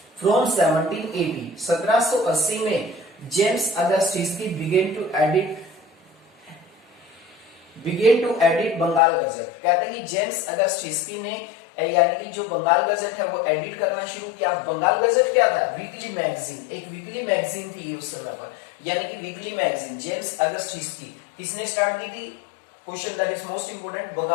फ्रॉम 1780 में James August Hicky began to edit Bengal Gazette. कहते हैं कि जेम्स अगस्ट हिस्की ने, यानी कि जो बंगाल गजट है वो एडिट करना शुरू किया। बंगाल गजट क्या था? वीकली मैगजीन, एक वीकली मैगजीन थी उस समय पर, यानी कि weekly magazine. James August Hicky किसने स्टार्ट की थी? Question that is most important.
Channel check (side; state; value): right; drops out; at 9.0 s